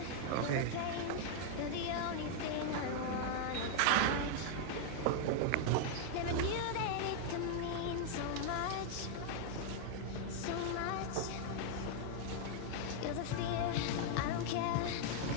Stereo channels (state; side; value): different; both; correlation 0.00